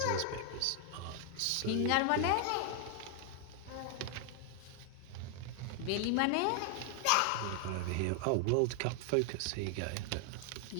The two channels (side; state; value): both; different; correlation 0.00